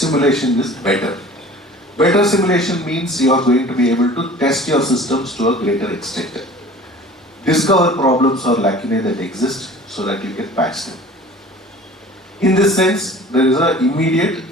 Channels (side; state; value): both; normal; correlation 0.44